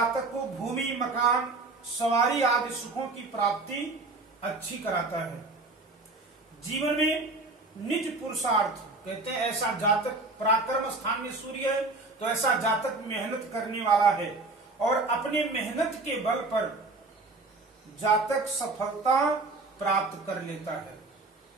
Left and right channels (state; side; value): quieter; left; 3.4 dB